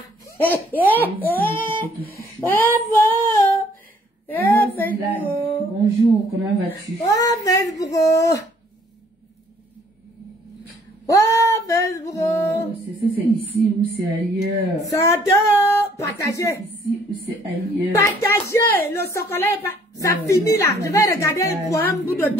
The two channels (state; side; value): normal; both; correlation 0.61